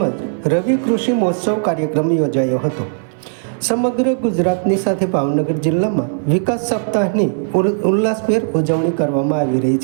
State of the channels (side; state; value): left; silent; digital silence